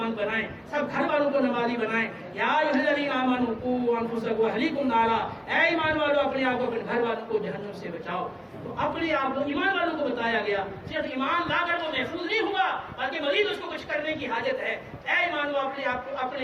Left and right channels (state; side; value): identical; both; correlation 1.00